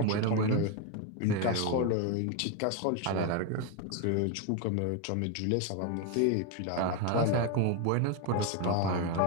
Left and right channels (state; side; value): different; both; correlation 0.01